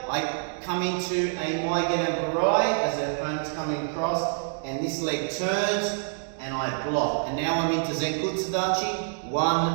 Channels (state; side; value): silent; left; digital silence